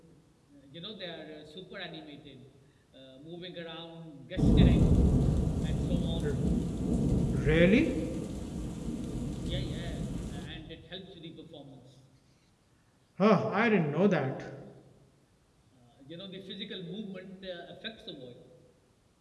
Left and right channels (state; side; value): identical; both; correlation 1.00